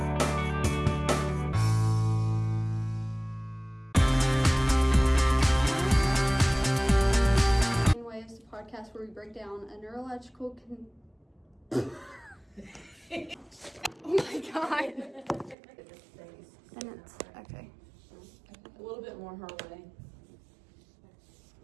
Brainwaves, the podcast where we break down a neurological Oh my god. Sentence. Okay. A little bit more her way.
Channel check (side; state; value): left; drops out; at 15.6 s